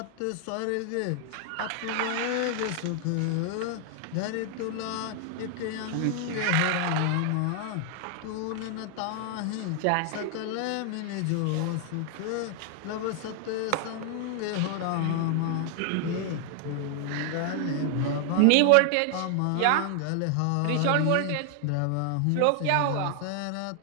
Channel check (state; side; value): different; both; correlation 0.00